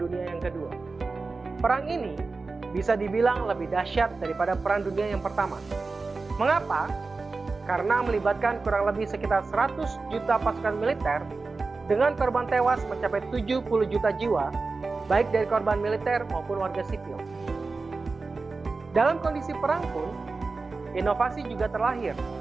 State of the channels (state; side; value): quieter; left; 4.0 dB